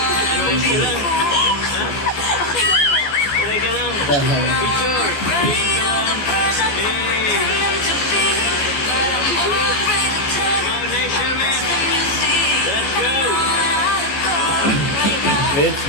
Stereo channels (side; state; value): right; late; 14 ms